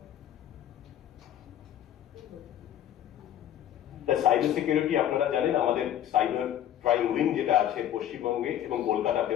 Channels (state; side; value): quieter; right; 11.2 dB